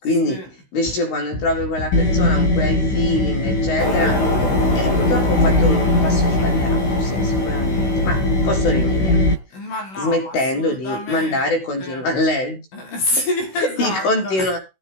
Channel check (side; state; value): right; late; 16 ms